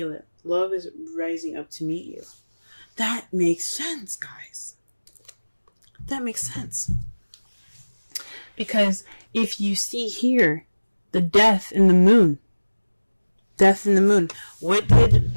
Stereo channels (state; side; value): inverted; both; correlation -1.00